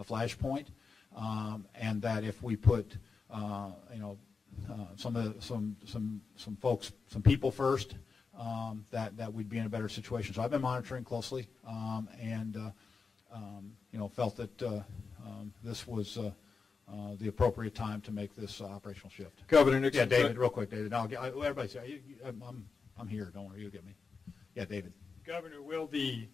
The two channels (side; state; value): right; quieter; 4.9 dB